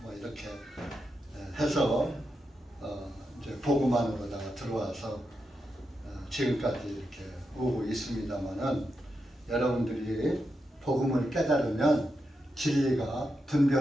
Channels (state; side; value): normal; both; correlation 0.86